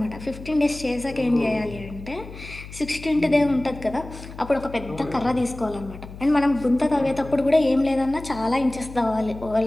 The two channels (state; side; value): noise; left; hum, 14 dB below the sound